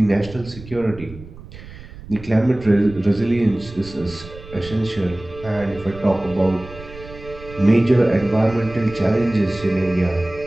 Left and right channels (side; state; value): right; noise; rumble, 16 dB below the sound